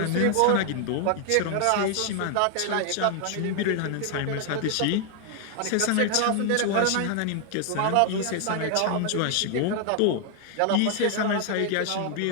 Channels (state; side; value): different; both; correlation 0.00